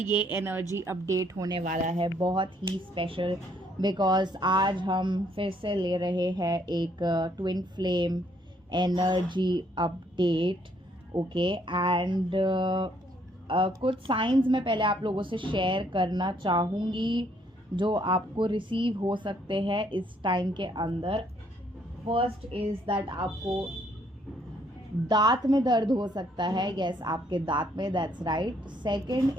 एनर्जी अपडेट होने वाला है बहुत ही स्पेशल बिकॉज आज हम फिर से ले रहे हैं एक twin flame energy update. Okay and कुछ साइंस मैं पहले आप लोगों से शेयर करना चाहूँगी जो आपको रिसीव हो सकते हैं इस टाइम के अंदर। फर्स्ट इज़ दैट आपको दांत में दर्द हो सकता है। यस, आपके दांत में, दैट्स राइट। सेकंड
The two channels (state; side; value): normal; both; correlation 0.68